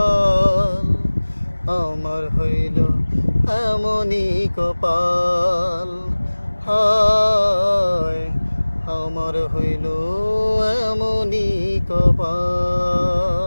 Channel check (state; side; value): inverted; both; correlation -1.00